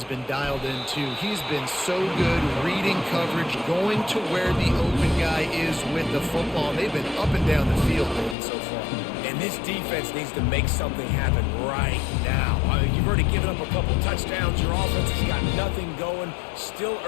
been dialed in, too. He's been so good reading coverage, going to where the open guy is with the football. They've been up and down the field so far. And this defense needs to make something happen right now. I mean, you've already given up a couple touchdowns. Your offense has got nothing going. Still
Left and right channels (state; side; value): drops out; right; at 8.3 s